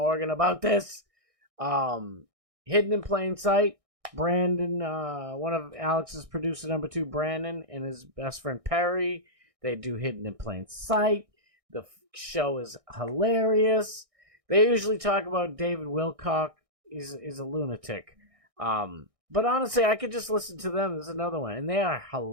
about this. Hidden in Plain Sight. Brandon, one of Alex's producer, number 2, Brandon, and his best friend Perry. They do Hidden in Plain Sight. The show is hilarious. They usually talk about David Wilcock. He's a lunatic. But honestly, I could just listen to them. There's another one, and they are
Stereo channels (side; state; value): left; late; 1.6 ms